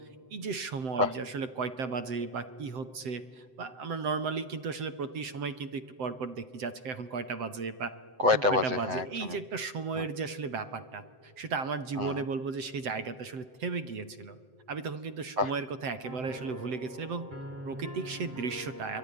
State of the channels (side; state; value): left; late; 7.8 ms